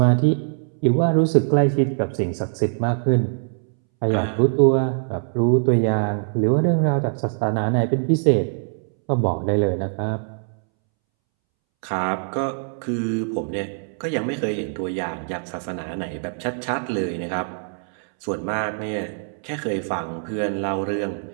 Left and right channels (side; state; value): left; silent; 64 dB below the other